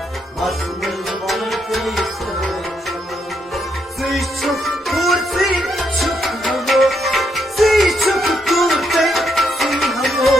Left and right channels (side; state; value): both; normal; correlation 0.77